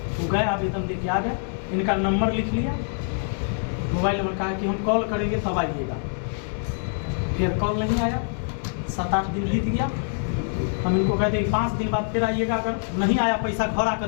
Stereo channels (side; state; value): right; silent; 62 dB below the other